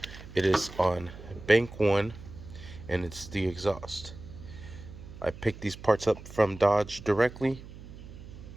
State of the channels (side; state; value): right; noise; hum, 15 dB below the sound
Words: It is on bank 1, and it's the exhaust. I picked these parts up from Dodge directly.